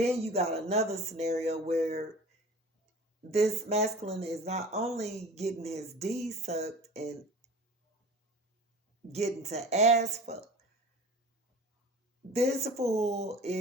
you got another scenario where this masculine is not only getting his D sucked and getting to ass fuck, this fool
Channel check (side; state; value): both; normal; correlation 0.40